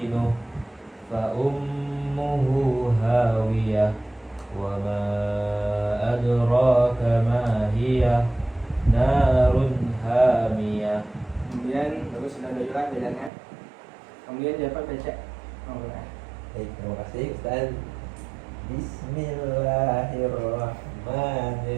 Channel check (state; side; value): drops out; left; at 13.3 s